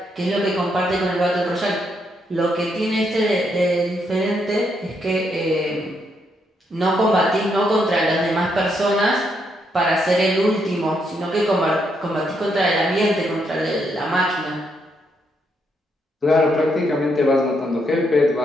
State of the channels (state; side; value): normal; both; correlation 0.77